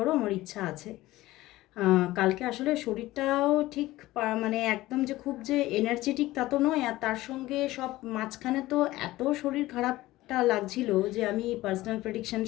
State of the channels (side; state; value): right; quieter; 17.3 dB